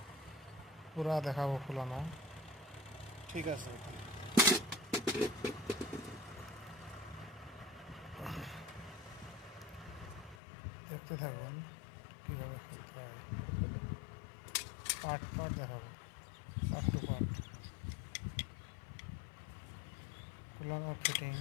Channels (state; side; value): drops out; right; at 10.4 s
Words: পুরা দেখাবো খোলানো। ঠিক আছে। দেখতে থাকুন কিভাবে খুলতে হয়, পার্ট পার্ট দেখাবো, পার্ট টু পার্ট। খোলানো ফিটিং